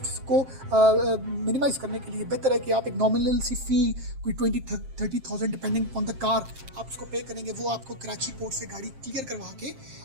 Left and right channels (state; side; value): late; left; 7.6 ms